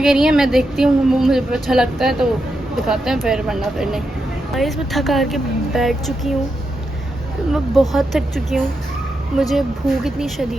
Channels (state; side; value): normal; both; correlation 0.85